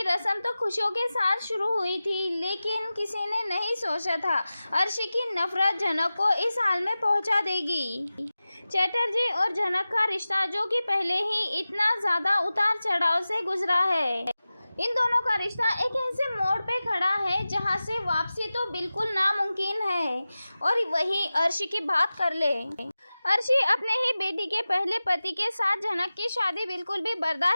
रस्म तो खुशियों के साथ शुरू हुई थी, लेकिन किसी ने नहीं सोचा था अर्शी की नफरत झनक को इस हाल में पहुंचा देगी। चटर्जी और झनक का रिश्ता, जो कि पहले ही इतना ज़्यादा उतार चढ़ाव से गुजरा है, इन दोनों का रिश्ता एक ऐसे मोड़ पे खड़ा है जहां से वापसी तो बिल्कुल नामुमकिन है। और वहीं अर्शी की बात कर ले। अर्शी अपने ही बेटी के पहले पति के साथ झनक की शादी बिल्कुल भी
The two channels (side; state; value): both; inverted; correlation -0.96